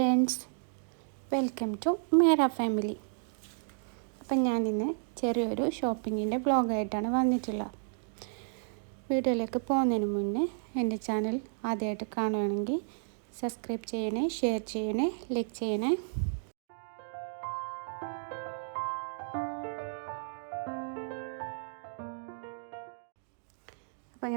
വെൽക്കം ടു മേര ഫാമിലി. അപ്പം ഞാനിന്ന് ചെറിയൊരു ഷോപ്പിങ്ങിൻ്റെ വ്ളോഗായിട്ടാണ് വന്നിട്ടുള്ളത്. വീഡിയോയിലേക്ക് പോകുന്നതിന് മുന്നേ എൻ്റെ ചാനൽ ആദ്യമായിട്ട് കാണുകയാണെങ്കിൽ സബ്സ്ക്രൈബ് ചെയ്യണേ, ഷെയർ ചെയ്യണേ, ലൈക്ക് ചെയ്യണേ. അപ്പോൾ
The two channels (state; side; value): silent; left; digital silence